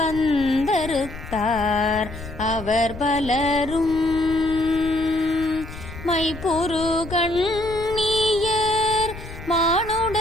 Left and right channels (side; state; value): left; noise; rumble, 12 dB below the sound